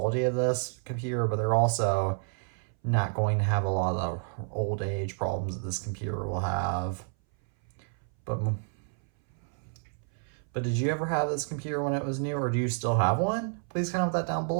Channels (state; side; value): silent; left; 58 dB below the other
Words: of this computer, but they're also not going to have a lot of the old age problems that this computer will have. But did you ever have this computer when it was new, or do you still have one? Please comment that down